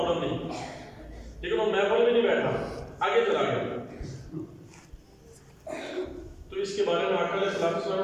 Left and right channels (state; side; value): identical; both; correlation 1.00